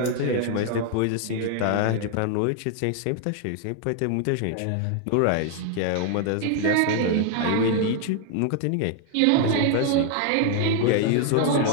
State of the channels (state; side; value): different; both; correlation 0.00